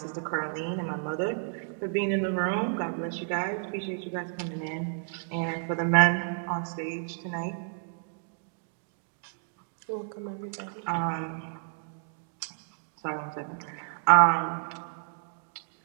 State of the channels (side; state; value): left; silent; digital silence